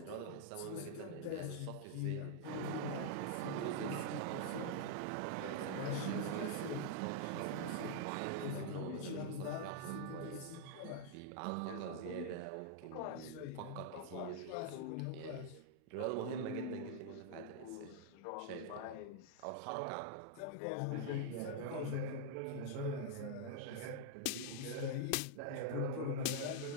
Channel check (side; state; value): both; different; correlation -0.01